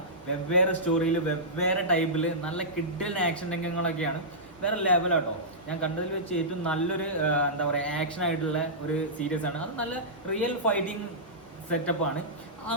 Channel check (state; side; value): normal; both; correlation -0.15